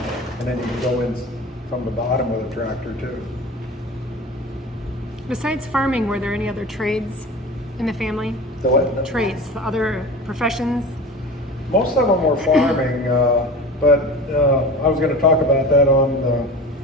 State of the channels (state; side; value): normal; both; correlation 0.34